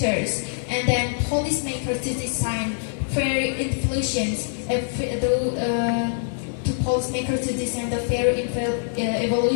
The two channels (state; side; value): silent; right; 62 dB below the other